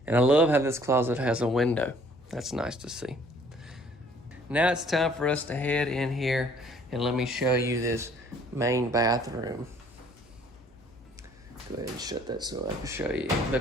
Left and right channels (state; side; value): noise; left; hum, 26 dB below the sound